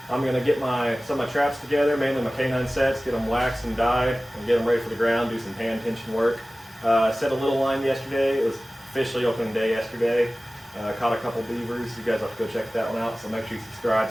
I'm going to get some of my traps together, mainly my canine sets, get them waxed and dyed, and get them ready for the ground, do some hand tension work. I set a little line yesterday. It was officially opening day yesterday. Caught a couple beavers. You guys have to go check that one out, so make sure you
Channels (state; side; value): normal; both; correlation 0.97